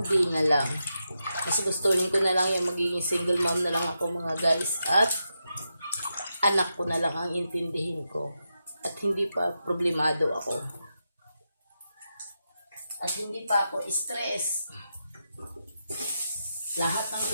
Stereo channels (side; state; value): both; inverted; correlation -0.87